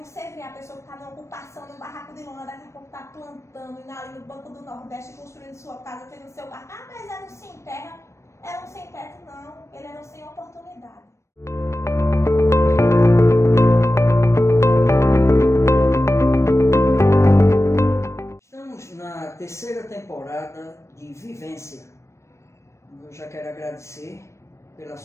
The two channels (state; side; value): late; right; 0.14 ms